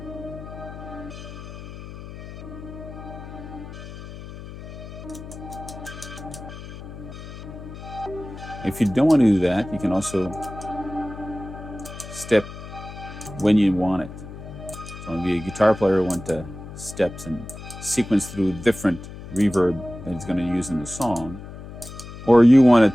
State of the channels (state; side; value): noise; left; hum, 12 dB below the sound